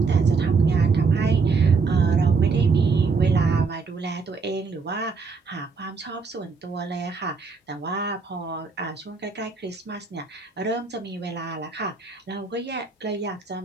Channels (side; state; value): left; quieter; 4.6 dB